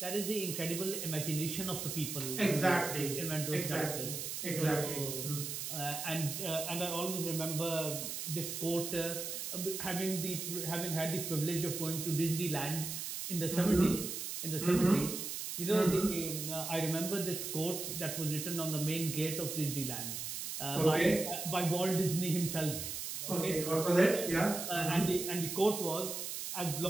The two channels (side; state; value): right; noise; hiss, 5 dB below the sound